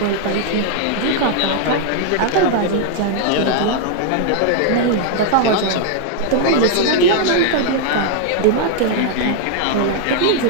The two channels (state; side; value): different; both; correlation 0.00